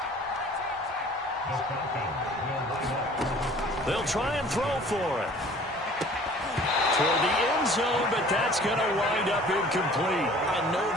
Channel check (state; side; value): normal; both; correlation 0.50